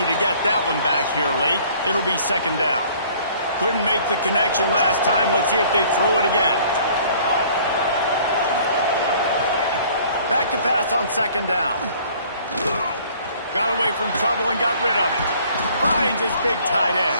to get that one back here late. It'll be second down. Couldn't make the connection last time. Let's see if they throw it again. Back to pass on second down. Got away from trouble and got rid of it. Finds his big tight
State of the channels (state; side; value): inverted; both; correlation -0.55